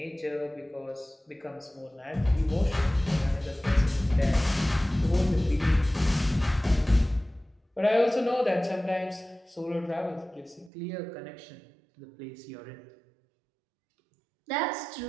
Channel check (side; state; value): left; drops out; at 10.7 s